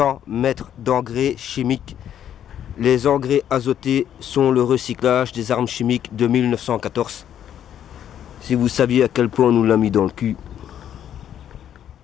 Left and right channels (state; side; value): quieter; right; 10.1 dB